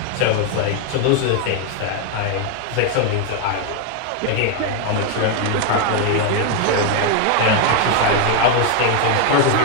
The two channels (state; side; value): different; both; correlation 0.01